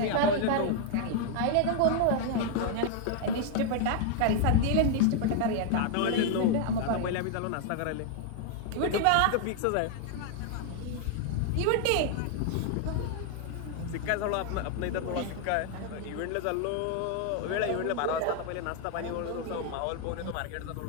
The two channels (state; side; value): different; both; correlation 0.00